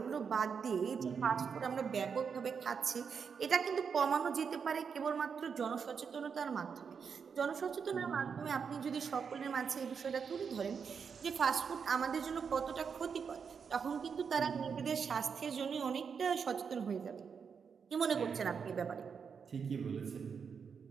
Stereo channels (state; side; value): quieter; left; 6.3 dB